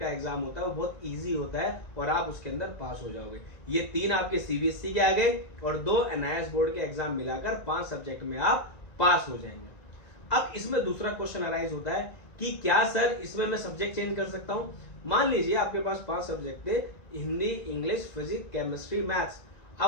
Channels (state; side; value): late; right; 1.9 ms